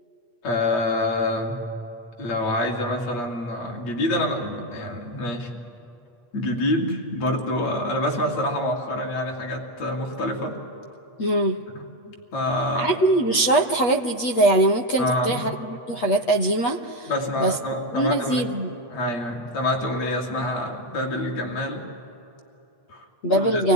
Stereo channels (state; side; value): late; right; 8.4 ms